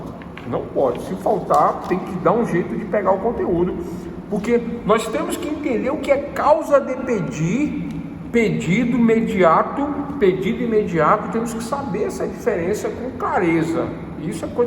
Não pode. Se faltar, tem que dar um jeito de pegar o conteúdo, porque nós temos que entender o que é causa de pedido imediato, temos que saber essa diferença com clareza. Isso é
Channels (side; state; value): both; identical; correlation 1.00